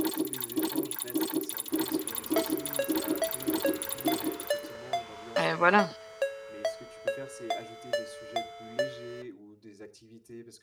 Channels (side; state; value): both; identical; correlation 1.00